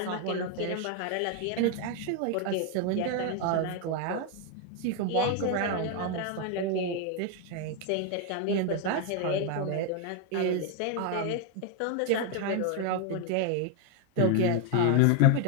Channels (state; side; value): different; both; correlation 0.01